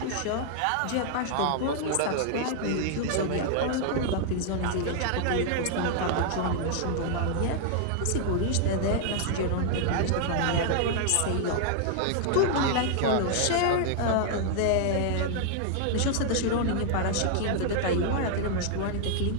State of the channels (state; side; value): different; both; correlation 0.00